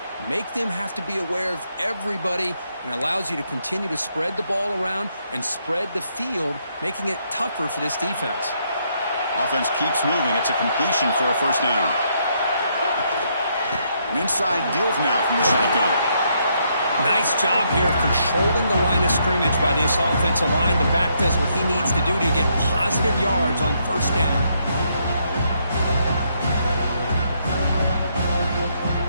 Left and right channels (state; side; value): inverted; both; correlation -0.74